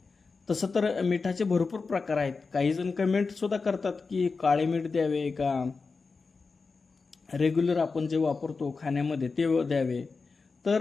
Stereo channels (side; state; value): right; quieter; 4.4 dB